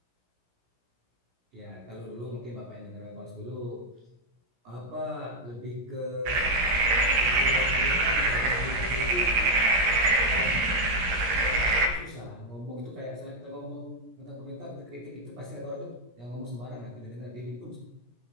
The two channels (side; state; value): left; late; 17 ms